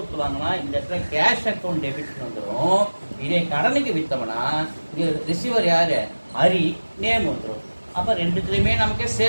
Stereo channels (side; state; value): both; inverted; correlation -1.00